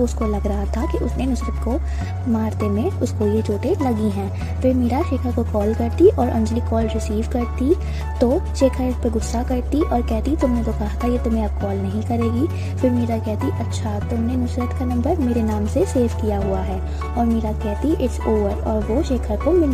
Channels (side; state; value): both; identical; correlation 1.00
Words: उसको लग रहा था कि उसने नुसरत को मारते में उसको ये चोटें लगी हैं। फिर मीरा शेखर को कॉल करती और अंजलि कॉल रिसीव करती तो शेखर इस पर गुस्सा करती और कहती तुमने तो कहा था ये तुम्हें अब कॉल नहीं करेगी। फिर मीरा कहती अच्छा तुमने नुसरत का नंबर मेरे नाम से सेव किया हुआ है, और मीरा कहती इट्स ओवर, और वो शेखर को